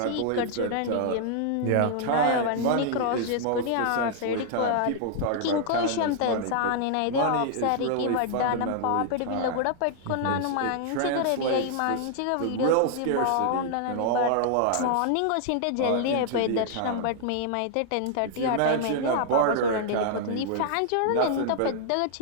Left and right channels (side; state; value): both; different; correlation -0.01